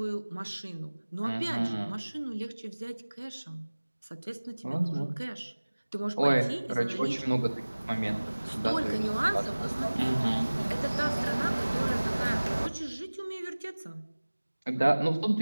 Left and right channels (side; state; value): both; inverted; correlation -1.00